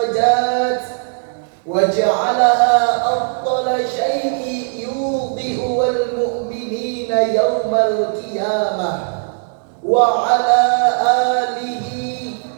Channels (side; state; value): left; silent; 60 dB below the other